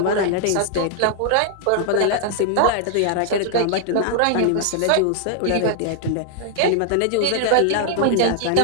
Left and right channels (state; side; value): different; both; correlation 0.00